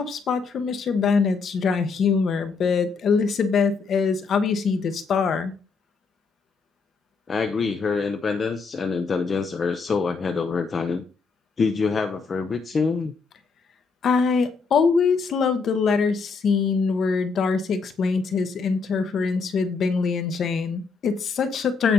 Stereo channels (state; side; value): quieter; right; 4.8 dB